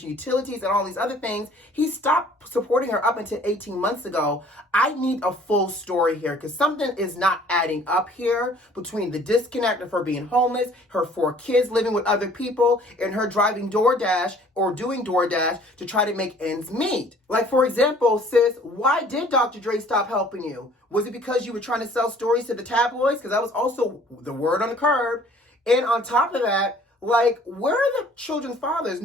utilities and all these other things. He stopped supporting her up until 18 months ago. I need a full story here because something is not adding up here between the disconnect of her being homeless, her 4 kids living with other people, and her driving DoorDash or doing DoorDash to try to make ends meet. Like, for example, sis, why did Dr. Dre stop helping you? Was it because you were trying to sell stories to the tabloids? Because that was also the word on the curb. And on top of that, like, where are the children's fathers?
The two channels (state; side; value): normal; both; correlation 0.54